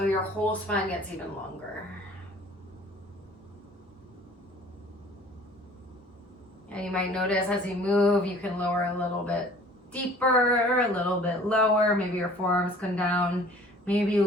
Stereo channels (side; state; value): both; normal; correlation 0.50